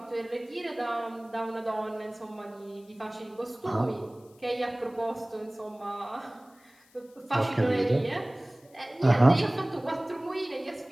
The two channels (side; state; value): left; noise; hiss, 30 dB below the sound